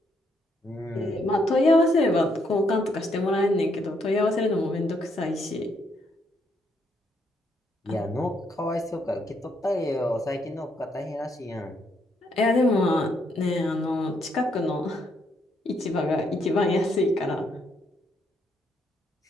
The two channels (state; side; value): normal; both; correlation 0.74